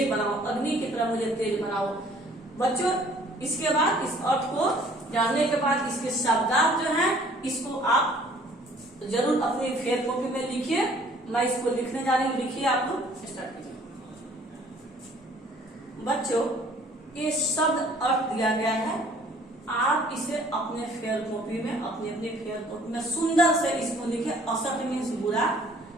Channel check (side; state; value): both; normal; correlation 0.56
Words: बनाओ, अग्नि की तरह मुझे तेज बनाओ। बच्चों, इसके बाद इस अर्थ को जानने के बाद इसके शब्दार्थ जो हैं, इसको आप जरूर अपनी फेयर कॉपी में लिखिए। मैं इसको लिखने जा रही हूँ, लिखिए आप लोग, स्टार्ट कीजिए। बच्चों, ये शब्द अर्थ दिया गया है, आप इसे अपने फेयर कॉपी में, अपनी फेयर कॉपी में सुंदर से इसको लिखे। असत मीन्स बुरा,